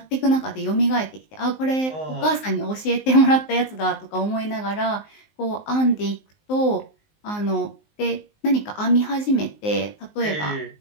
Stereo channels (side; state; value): right; late; 19 ms